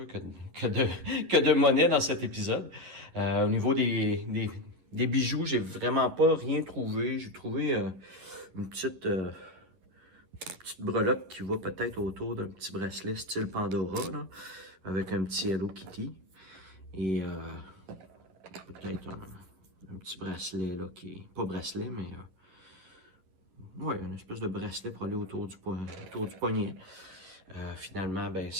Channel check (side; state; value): left; late; 10 ms